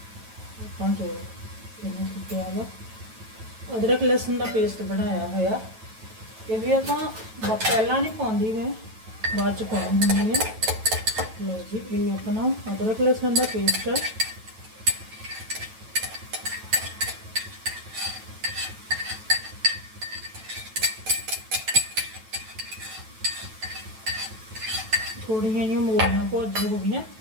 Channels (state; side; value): late; left; 9.1 ms